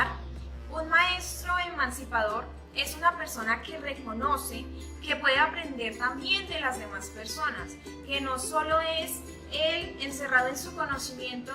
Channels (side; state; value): both; identical; correlation 1.00